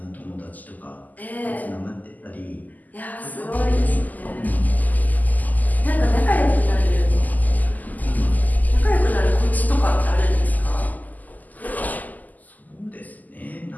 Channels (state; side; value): late; right; 0.081 ms